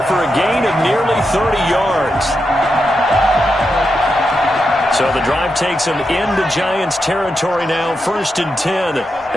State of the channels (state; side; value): normal; both; correlation 0.86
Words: for a gain of nearly 30 yards. So the drive takes them into Giants territory now. 1st and 10